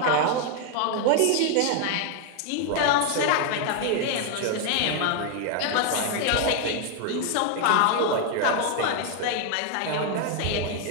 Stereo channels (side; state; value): both; different; correlation 0.00